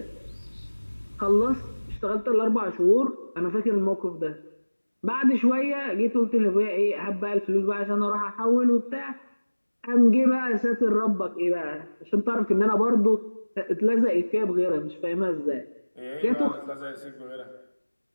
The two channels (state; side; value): inverted; both; correlation -1.00